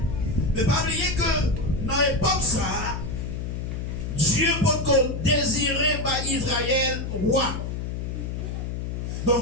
Mais pas oublier que dans l'époque ça, Dieu peut désirer par Israël roi.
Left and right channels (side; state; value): left; noise; hum, 4 dB below the sound